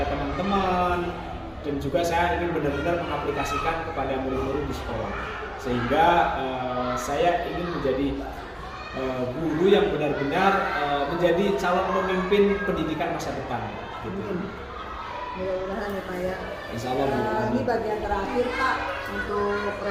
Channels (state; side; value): identical; both; correlation 1.00